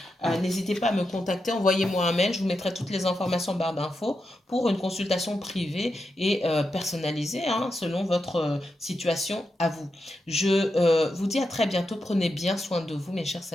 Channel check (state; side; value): normal; both; correlation 0.87